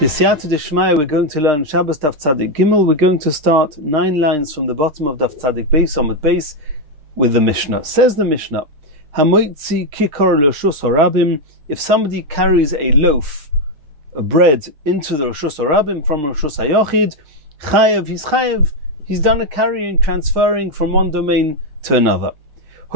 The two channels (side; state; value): left; late; 6.5 ms